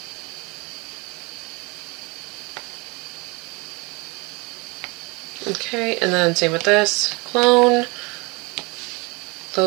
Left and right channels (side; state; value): left; quieter; 27.2 dB